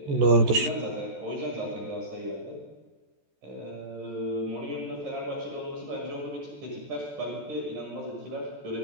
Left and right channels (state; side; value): late; left; 14 ms